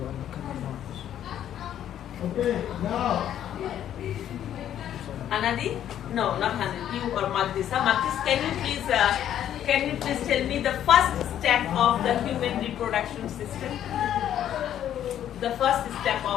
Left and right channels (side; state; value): right; quieter; 10.7 dB